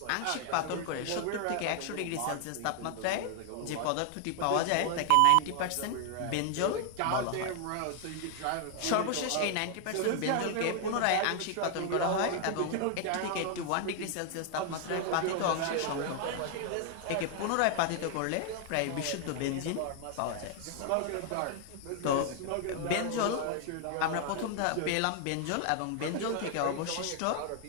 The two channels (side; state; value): both; different; correlation 0.00